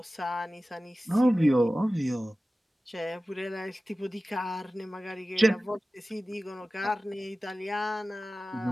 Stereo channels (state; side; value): normal; both; correlation 0.96